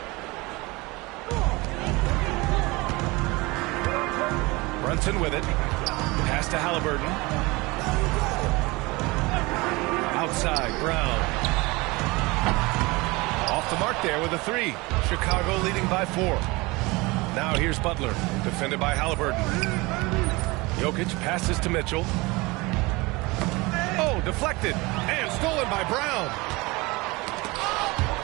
Brunson with it. Pass to Halliburton. Outside, Brown. Off the mark there with a 3. Chicago leading by 4. Now here's Butler, defended by Halliburton. Jokic passes to Mitchell. Oh, deflected and stolen by Brown.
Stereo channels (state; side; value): quieter; left; 23.6 dB